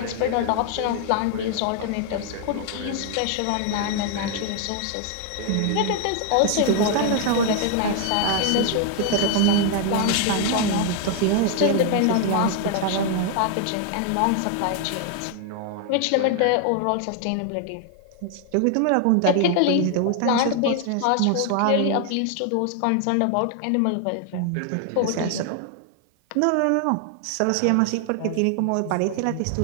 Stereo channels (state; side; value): different; both; correlation 0.00